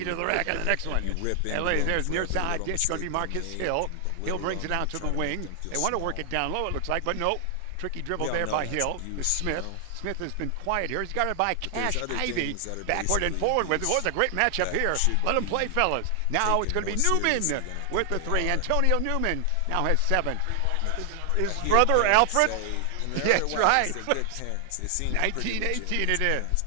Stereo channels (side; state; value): both; different; correlation 0.00